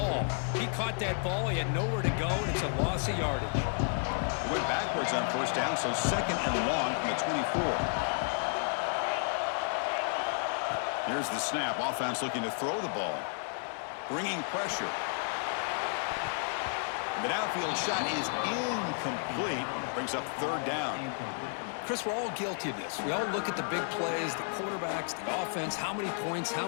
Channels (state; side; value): silent; right; 56 dB below the other